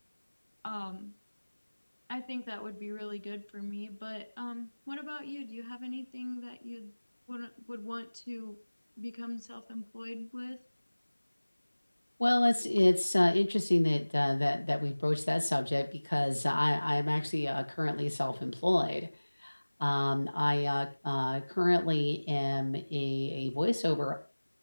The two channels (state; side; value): inverted; both; correlation -1.00